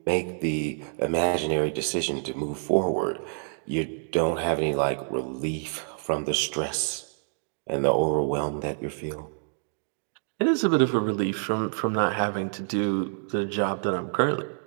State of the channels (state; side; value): silent; left; 60 dB below the other